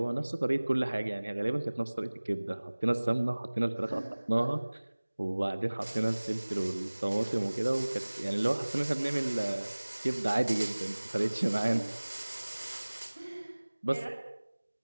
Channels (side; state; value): both; inverted; correlation -1.00